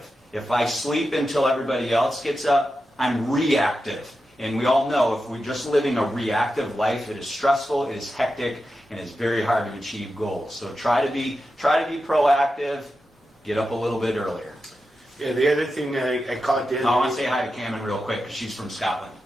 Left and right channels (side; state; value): both; normal; correlation 0.90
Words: If I sleep until everybody else gets up, I'm reactive. And we all know if we're just living a reactive life, it is stressful, it is hectic, and it's very hard to achieve goals. So try to be proactive. Get up a little bit earlier. Yeah, the other thing I caught the other I want to say hi to Cameron real quick because she's from Scotland.